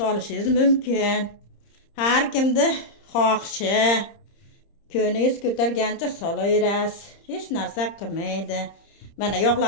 mumkin. Har kimni xohishi, ko'ningiz ko'targancha solaverasiz. Hech narsa qilmaydi. Mana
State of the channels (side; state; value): right; late; 30 ms